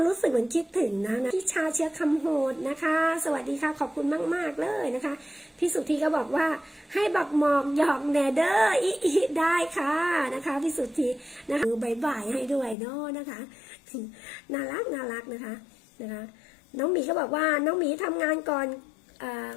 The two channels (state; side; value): drops out; right; at 12.8 s